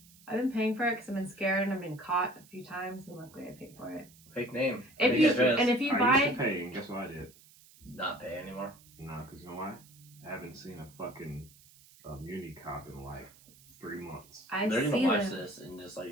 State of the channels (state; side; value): noise; right; hiss, 25 dB below the sound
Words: I've been paying for it because I've been scared and I've been caught a few times, and luckily I paid for it. Fake name. If Fake you address. and if you I buy used to pay, and guess what I did? Not pay anymore. Nah, because you know why? I haven't seen a fucking muni cop in like 3 months. I They're see gonna watch them. this and just like